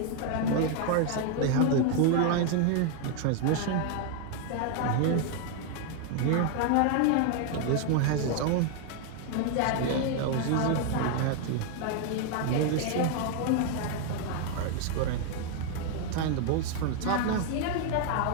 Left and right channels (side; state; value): both; different; correlation 0.00